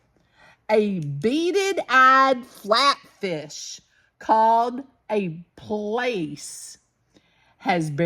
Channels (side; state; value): both; identical; correlation 1.00